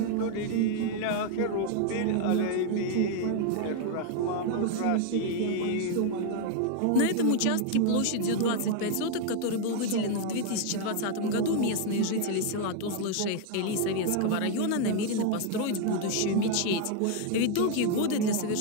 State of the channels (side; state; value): both; different; correlation 0.00